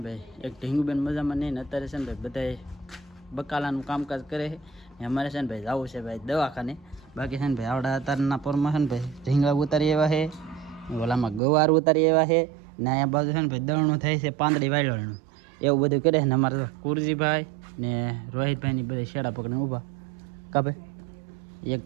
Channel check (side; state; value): left; drops out; at 11.4 s